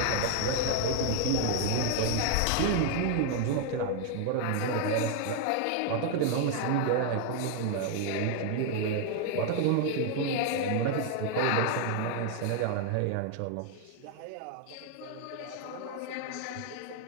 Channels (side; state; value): both; different; correlation 0.00